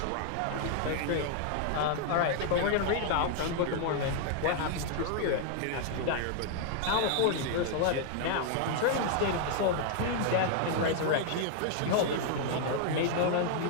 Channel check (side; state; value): both; different; correlation 0.00